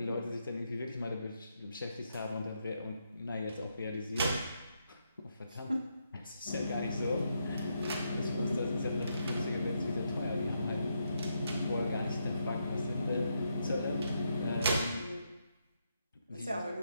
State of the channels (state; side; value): inverted; both; correlation -0.80